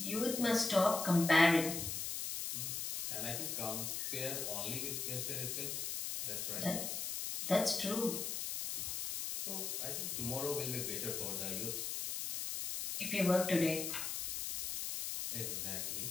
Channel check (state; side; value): noise; left; hiss, 3 dB below the sound